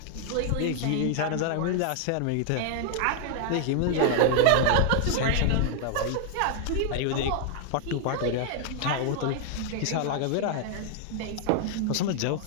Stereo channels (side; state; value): both; different; correlation 0.00